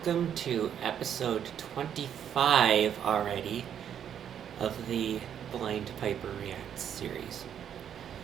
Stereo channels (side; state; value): left; quieter; 9.1 dB